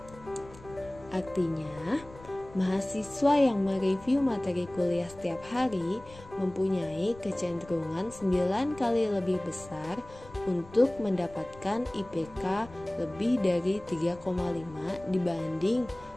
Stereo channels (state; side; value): noise; left; rumble, 20 dB below the sound